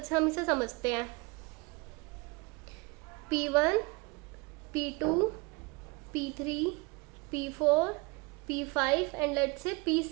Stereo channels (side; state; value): left; quieter; 27.5 dB